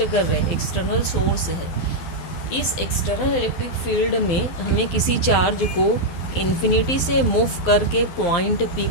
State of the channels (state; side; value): late; right; 12 ms